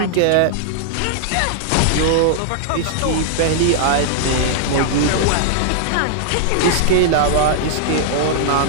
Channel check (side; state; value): both; different; correlation -0.01